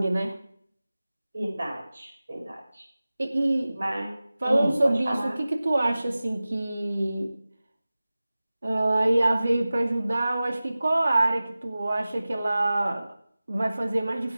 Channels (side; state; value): both; inverted; correlation -0.97